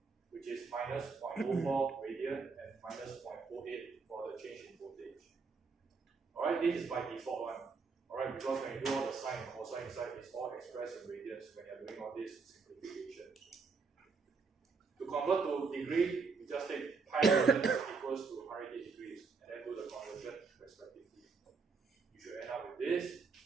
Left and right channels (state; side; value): quieter; left; 4.8 dB